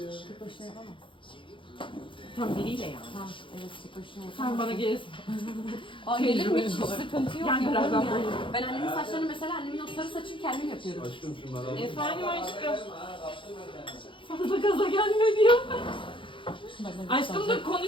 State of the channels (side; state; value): right; late; 0.25 ms